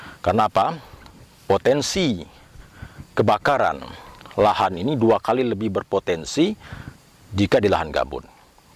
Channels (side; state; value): both; identical; correlation 1.00